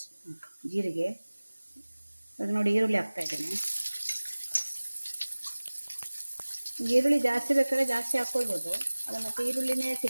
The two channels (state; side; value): inverted; both; correlation -1.00